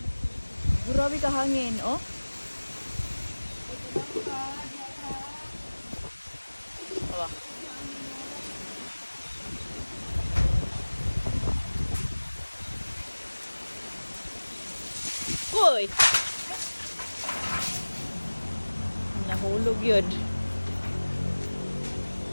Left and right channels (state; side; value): inverted; both; correlation -1.00